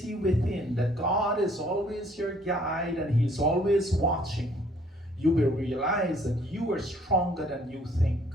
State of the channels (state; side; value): normal; both; correlation 0.61